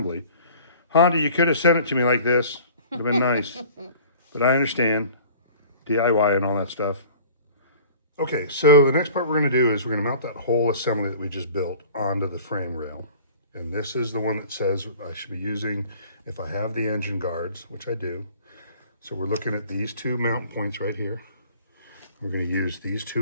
Honda, you could have sent it to me like this. Would have been nice. But I understand. DIY and all that stuff. Okay, so the next part we're going to do is we're going to mount that whole assembly that we just built onto the frame rail. And this is the one that says I should be using if I have the engine guards, which I do. So we're looking at these two mount points right here. We're going to use these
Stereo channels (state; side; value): inverted; both; correlation -0.46